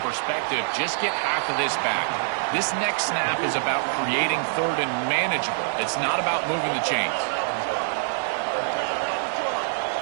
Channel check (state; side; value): silent; left; 62 dB below the other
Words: perspective, just get half of this back. This next snap is about creating third and manageable. It's not about moving the chains.